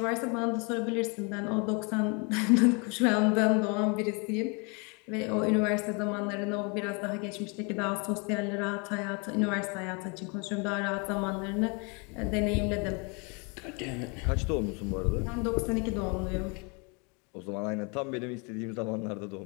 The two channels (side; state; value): right; quieter; 32.5 dB